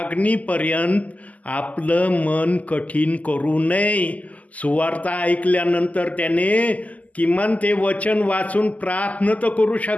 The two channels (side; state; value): right; late; 0.074 ms